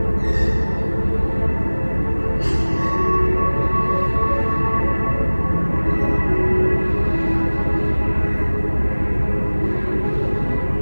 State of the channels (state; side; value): inverted; both; correlation -1.00